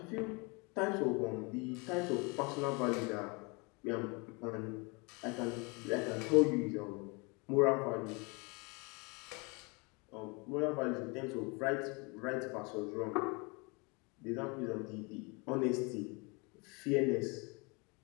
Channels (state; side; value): quieter; right; 29.7 dB